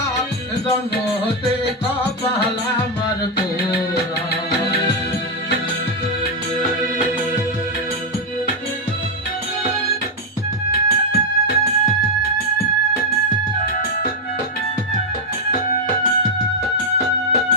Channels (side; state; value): both; normal; correlation 0.02